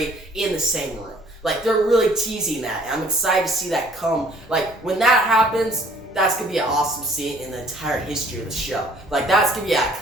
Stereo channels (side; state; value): both; normal; correlation 0.57